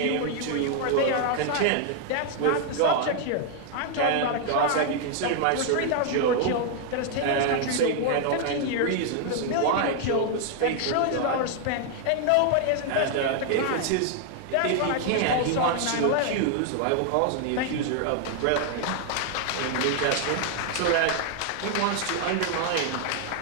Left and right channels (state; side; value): different; both; correlation 0.00